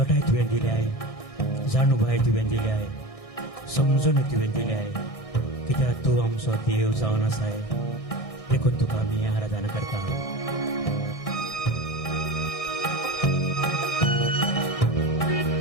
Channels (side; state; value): right; late; 1.6 ms